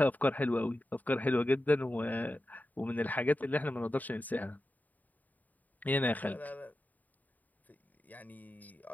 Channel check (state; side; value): late; right; 0.081 ms